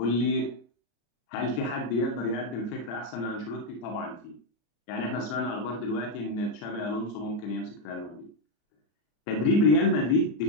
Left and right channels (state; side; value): late; right; 34 ms